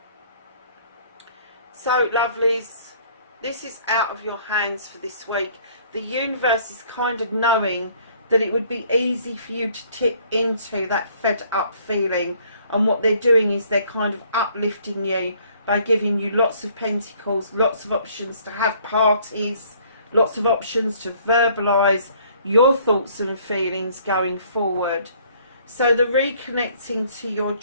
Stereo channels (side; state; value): both; inverted; correlation -0.59